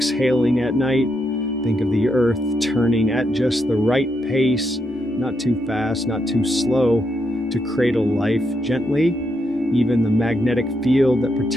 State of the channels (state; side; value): normal; both; correlation 0.80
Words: at night. Think of the earth turning at just the right pace, not too fast, not too slow, to cradle life gently. Even the magnetic field that